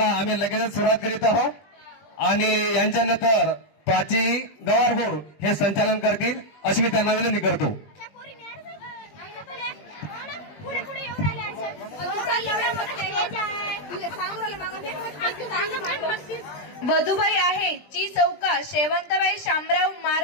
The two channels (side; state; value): right; late; 20 ms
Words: आम्ही लगेच सुरुवात करीत आहोत आणि यांच्यानंतर प्राची गवारगोर हे संचालन करतील अशी मी त्यांना विनंती करतो. वधूबाई आहे ची चौका शेवंतबाई शामराव